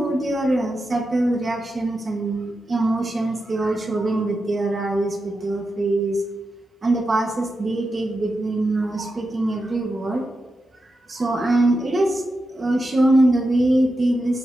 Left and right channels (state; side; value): normal; both; correlation 0.89